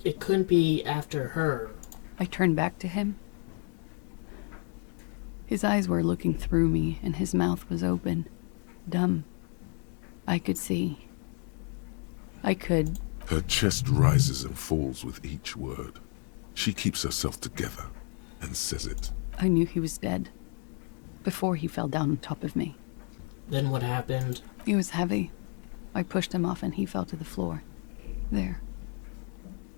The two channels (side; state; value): right; quieter; 38.1 dB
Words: couldn't be after her. I turned back to him. His eyes were looking through me, and his mouth was open. Dumb. I could see. I could... Her chest rises and falls with each word. She keeps herself together and says it. I knew he was dead. Before he fell down on top of me. Then what happened? He was heavy. I pushed him off and he fell to the floor. There.